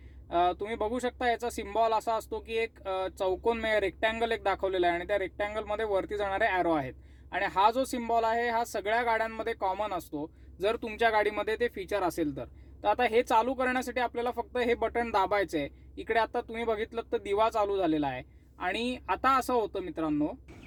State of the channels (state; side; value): identical; both; correlation 1.00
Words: तुम्ही बघू शकता याचा सिम्बॉल असा असतो की एक चौकोन रेक्टँगल एक दाखवलेला आहे आणि त्या रेक्टँगलमध्ये वरती जाणारे ॲरो आहेत, आणि हा जो सिम्बॉल आहे हा सगळ्या गाड्यांमध्ये कॉमन असतो जर तुमच्या गाडीमध्ये ते फीचर असेल तर. आता हे चालू करण्यासाठी आपल्याला फक्त हे बटन दाबायचं आहे. इकडे आता तुम्ही बघितलं तर दिवा चालू झालेला आहे, आणि आता असं होतं मित्रांनो